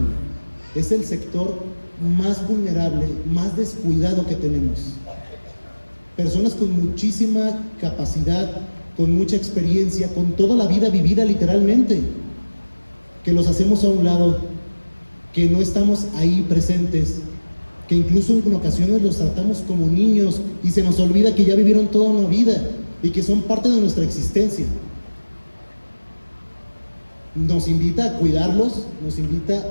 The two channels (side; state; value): both; inverted; correlation -1.00